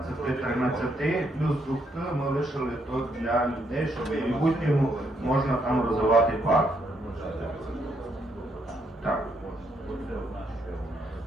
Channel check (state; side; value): normal; both; correlation 0.75